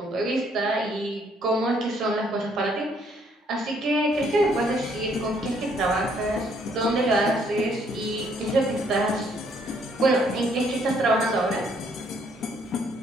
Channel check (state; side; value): normal; both; correlation 0.67